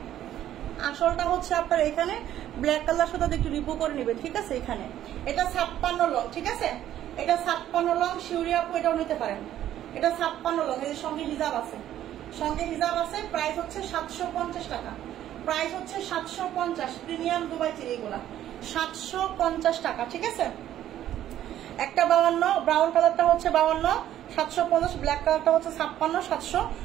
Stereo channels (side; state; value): left; quieter; 12.0 dB